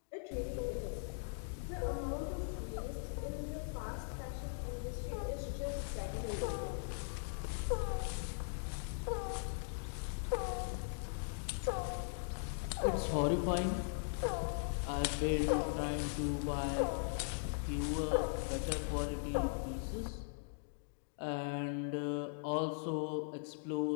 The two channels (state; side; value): silent; right; digital silence